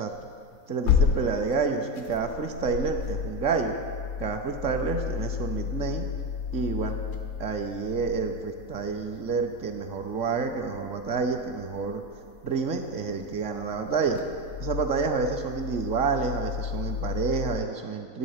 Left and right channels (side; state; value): right; late; 3.6 ms